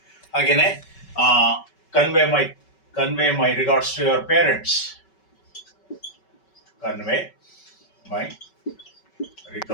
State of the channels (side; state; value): right; late; 5.3 ms